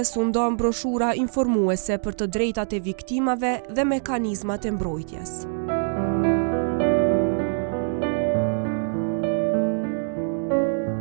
u ndan broshura informuese për të drejtat e viktimave dhe mekanizmat e mbrojtjes.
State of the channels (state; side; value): silent; left; digital silence